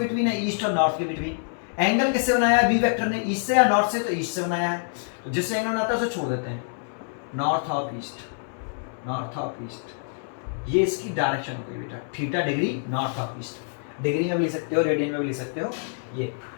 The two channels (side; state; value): right; silent; 61 dB below the other